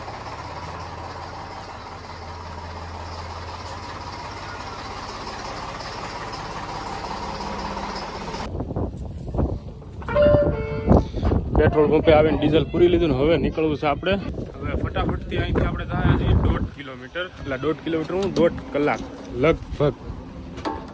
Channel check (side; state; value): both; identical; correlation 1.00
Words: પેટ્રોલ પંપે આવીને ડીઝલ પૂરી લીધું ને હવે નીકળવું છે આપણે. હવે ફટાફટથી અહીંથી આપણે જાય છીએ 1.5 કિલોમીટર, એટલે 1.5 કિલોમીટર હું 1.5 કલાક લગભગ,